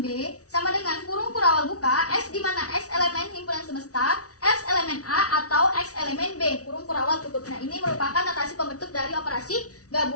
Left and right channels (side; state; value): right; late; 0.67 ms